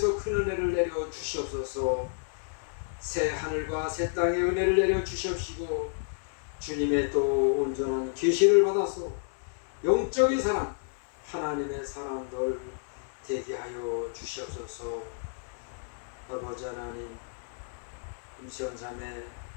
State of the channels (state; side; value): silent; right; digital silence